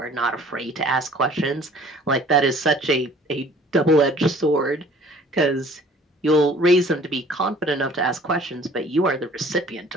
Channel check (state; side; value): normal; both; correlation 0.52